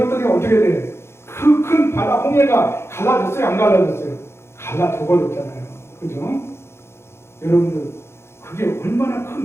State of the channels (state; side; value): late; right; 0.12 ms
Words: 어떻게 돼? 그 큰 바다 홍해가 갈라졌어요? 안 갈라졌어요? 갈라져 버렸잖아요. 그죠? 여러분들 그게 얼마나